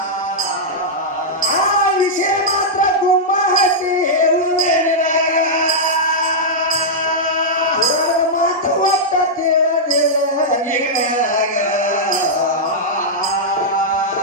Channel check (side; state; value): both; normal; correlation -0.08